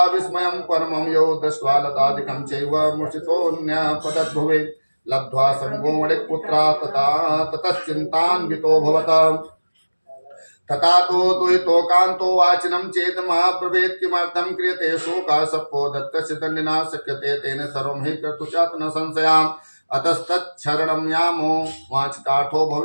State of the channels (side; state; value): both; inverted; correlation -1.00